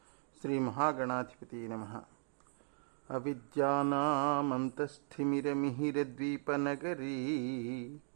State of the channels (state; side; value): silent; left; digital silence